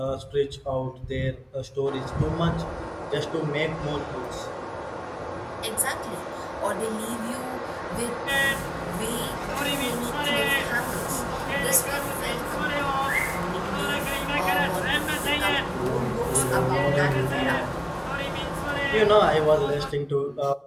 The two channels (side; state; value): both; identical; correlation 1.00